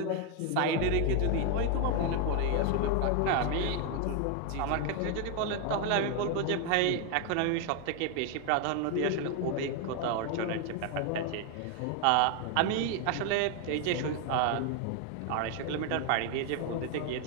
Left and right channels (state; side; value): different; both; correlation 0.01